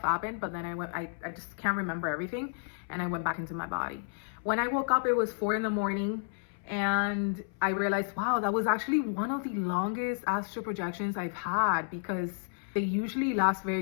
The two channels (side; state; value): right; silent; 57 dB below the other